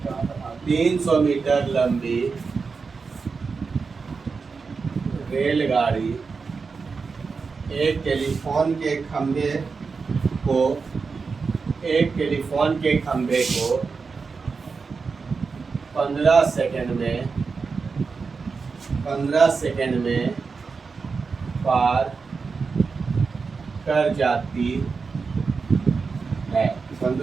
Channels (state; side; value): quieter; left; 4.9 dB